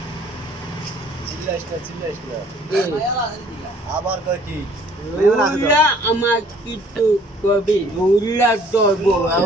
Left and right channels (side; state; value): both; normal; correlation 0.57